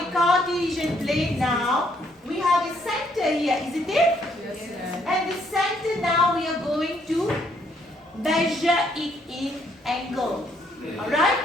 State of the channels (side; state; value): both; normal; correlation 0.69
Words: a Cartesian plane now, we have a center here, isn't it? Yes, ma'am. And the center now we are going to measure it in angle. Alright?